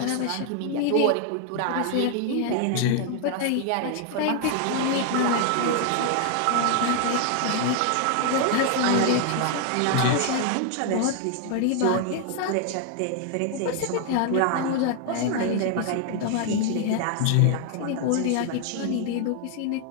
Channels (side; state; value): both; different; correlation 0.00